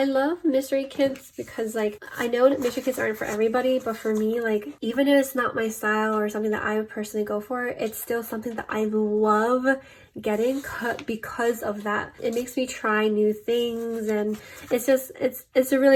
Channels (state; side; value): identical; both; correlation 1.00